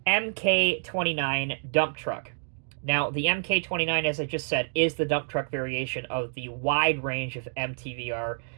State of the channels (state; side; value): silent; left; digital silence